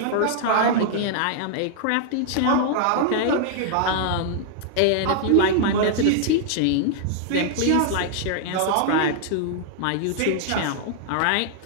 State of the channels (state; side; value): different; both; correlation -0.01